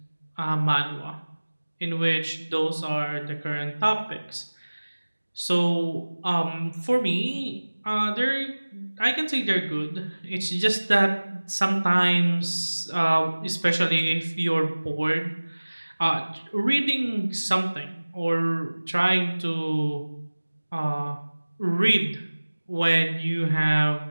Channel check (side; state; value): both; inverted; correlation -1.00